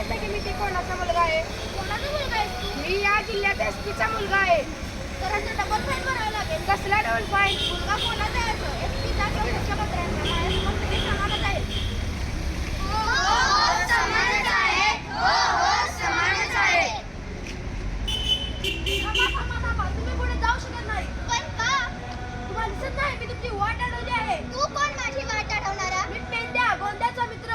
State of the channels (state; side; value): identical; both; correlation 1.00